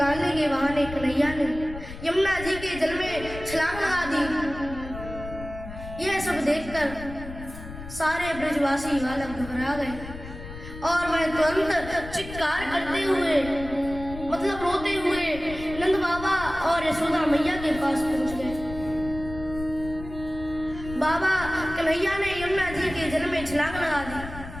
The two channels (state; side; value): noise; left; rumble, 12 dB below the sound